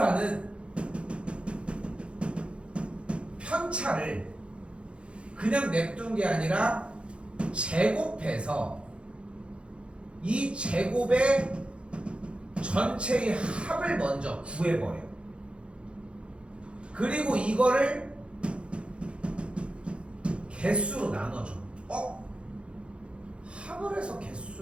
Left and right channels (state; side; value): late; left; 0.058 ms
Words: 편차를 그냥 냅둔 게 아니라 제곱해서 이 제곱의 전체의 합을 먼저 구해버려. 그리고 이거를 개수로 나눠줘. 합을 해서